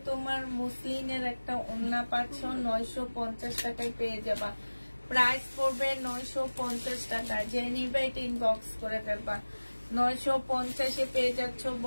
তোমার মুসলিনের একটা ওড়না পাচ্ছ, 950 টাকায় পেয়ে যাবা। প্রাইস পড়বে 950 টাকা। যে নিবে এটা ইনবক্স করে ফেলবা, 950-এ পেয়ে যাচ্ছ।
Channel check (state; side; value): inverted; both; correlation -1.00